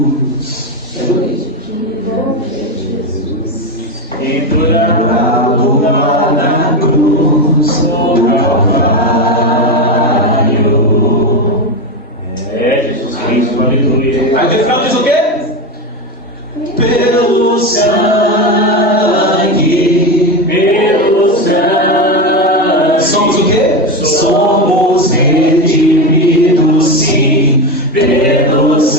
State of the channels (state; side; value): normal; both; correlation 0.15